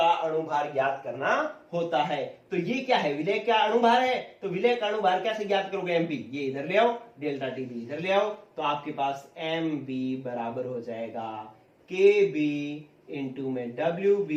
अणुभार ज्ञात करना होता है। तो ये क्या है? विलय का अणुभार है, तो विलय का अणुभार कैसे ज्ञात करोगे? एम बी, ये इधर ले आओ, डेल्टा टी बी इधर ले आओ, तो आपके पास एम बी बराबर हो जाएगा के बी इंटू में डब्ल्यू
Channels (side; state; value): both; identical; correlation 1.00